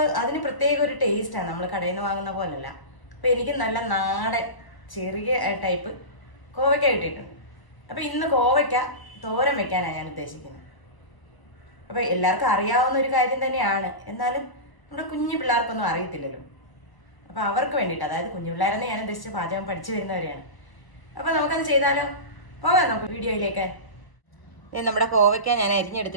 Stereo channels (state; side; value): late; right; 1.0 ms